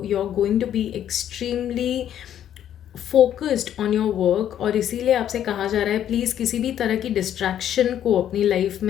going to be extremely focused on your work. और इसीलिए आपसे कहा जा रहा है प्लीज़ किसी भी तरह की डिस्ट्रैक्शन को अपनी लाइफ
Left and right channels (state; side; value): quieter; right; 10.5 dB